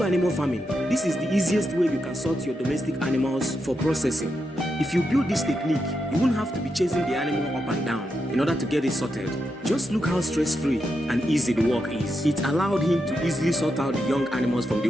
animal farming, this is the easiest way you can sort your domestic animals for processing. If you build this technique, you won't have to be chasing the animal up and down in order to get it sorted. Just look how stress-free and easy the work is. It allowed him to easily sort out the young animals from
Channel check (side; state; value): both; normal; correlation 0.85